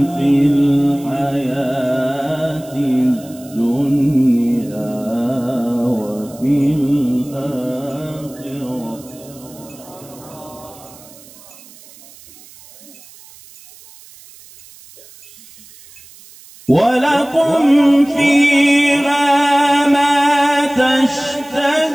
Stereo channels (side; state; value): right; noise; hiss, 22 dB below the sound